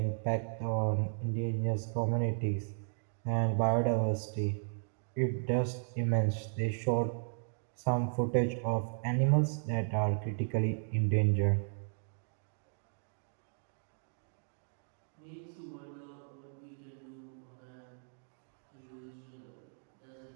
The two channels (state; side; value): silent; left; digital silence